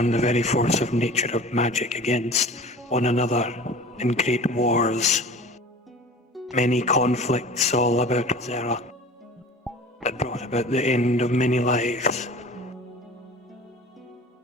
the very force of nature of magic against one another in great wars. Many conflicts all about Ozera that brought about the end of many lives.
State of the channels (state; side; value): normal; both; correlation 0.41